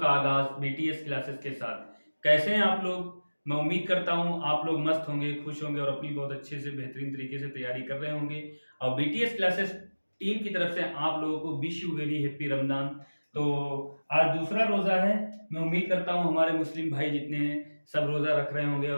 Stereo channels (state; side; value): inverted; both; correlation -1.00